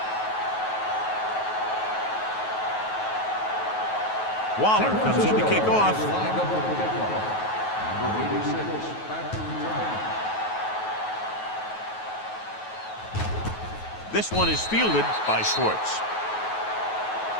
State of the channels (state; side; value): late; right; 9.3 ms